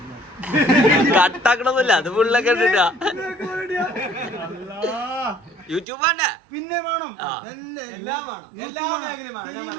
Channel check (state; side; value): drops out; left; at 5.9 s